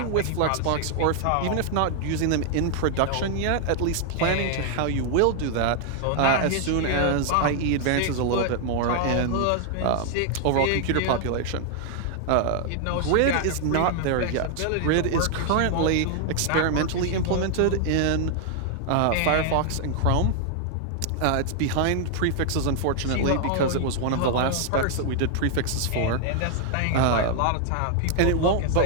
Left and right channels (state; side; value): different; both; correlation 0.00